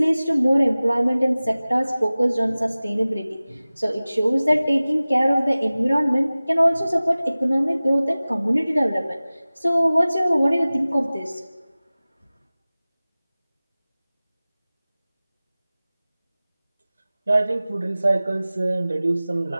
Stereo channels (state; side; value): inverted; both; correlation -0.98